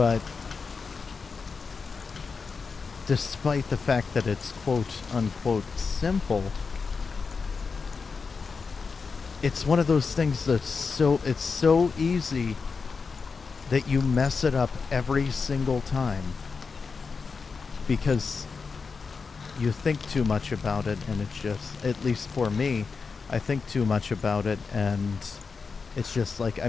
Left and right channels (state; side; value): quieter; right; 5.0 dB